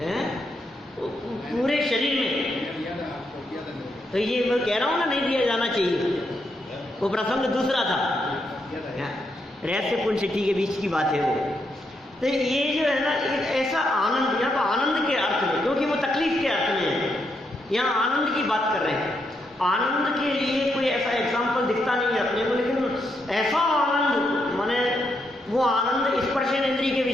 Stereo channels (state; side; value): normal; both; correlation 0.80